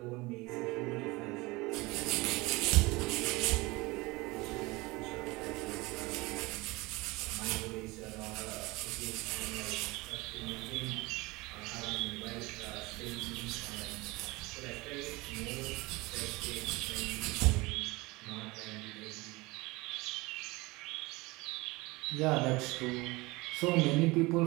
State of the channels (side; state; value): left; quieter; 22.8 dB